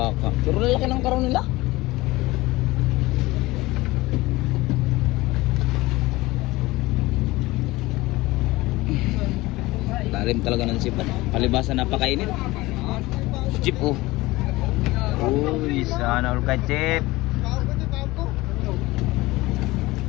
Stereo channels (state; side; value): quieter; right; 19.9 dB